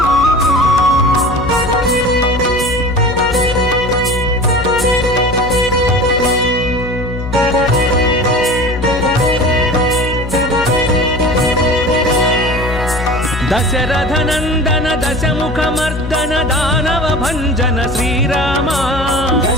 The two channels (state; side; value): noise; left; hum, 8 dB below the sound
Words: దశరథ నందన దశముఖ మర్దన దానవ భంజన శ్రీరామ